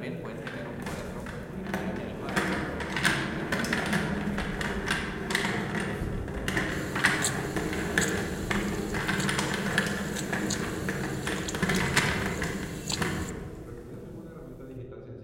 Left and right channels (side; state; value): both; identical; correlation 1.00